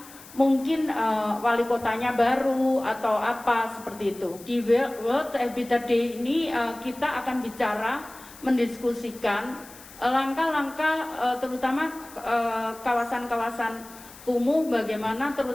mungkin wali kotanya baru atau apa seperti itu. Di World Habitat Day ini kita akan bicara, mendiskusikan langkah-langkah terutama kawasan-kawasan kumuh bagaimana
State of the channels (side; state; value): left; noise; hiss, 19 dB below the sound